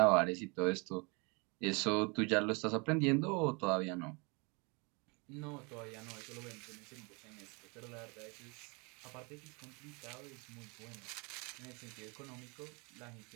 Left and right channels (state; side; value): quieter; left; 30.5 dB